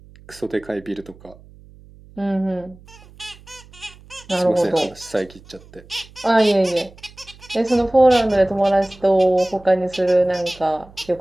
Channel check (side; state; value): right; noise; hum, 23 dB below the sound